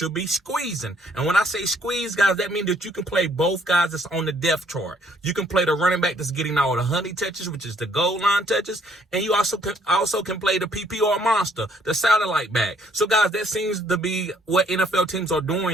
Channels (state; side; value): normal; both; correlation 0.65